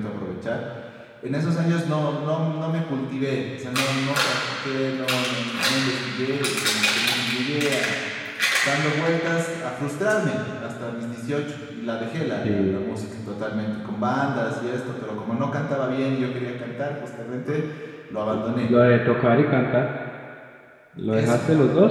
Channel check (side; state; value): both; identical; correlation 1.00